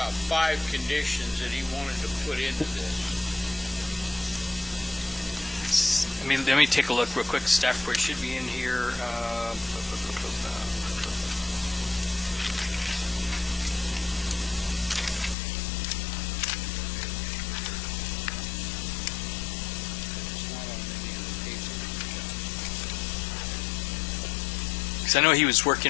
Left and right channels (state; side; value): drops out; right; at 15.4 s